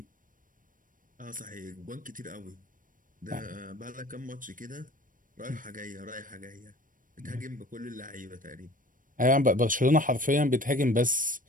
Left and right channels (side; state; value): left; late; 0.39 ms